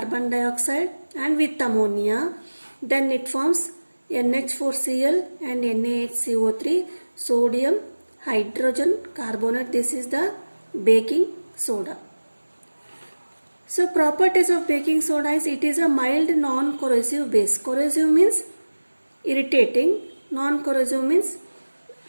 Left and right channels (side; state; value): both; inverted; correlation -1.00